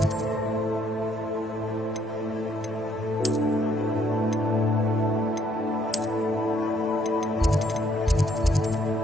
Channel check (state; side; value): normal; both; correlation 0.69